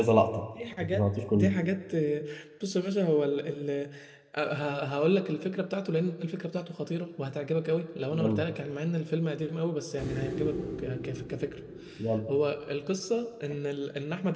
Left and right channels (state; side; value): identical; both; correlation 1.00